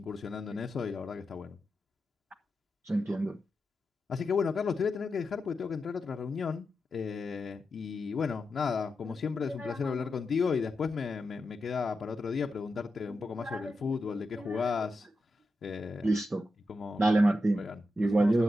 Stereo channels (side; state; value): both; normal; correlation 0.88